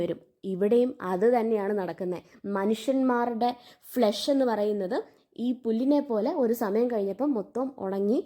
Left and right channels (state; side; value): identical; both; correlation 1.00